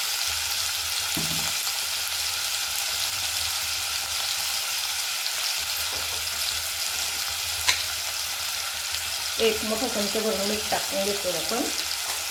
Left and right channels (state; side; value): identical; both; correlation 1.00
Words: एक मोठा चमचा भरून मीठ टाकून घेतो आपण।